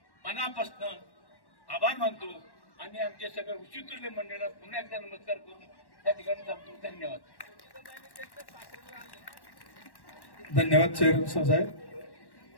मनापासून आभार मानतो आणि आमचे सगळे विचित्र मंडळाला पुन्हा एकदा नमस्कार करून त्या ठिकाणी थांबतो. धन्यवाद. धन्यवाद चेअरमन साहेब.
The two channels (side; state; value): right; late; 1.1 ms